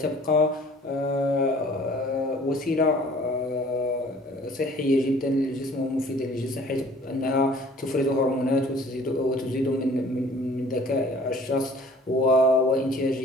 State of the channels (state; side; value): normal; both; correlation 0.51